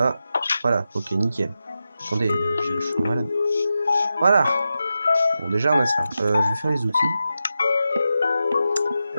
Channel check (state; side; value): inverted; both; correlation -0.90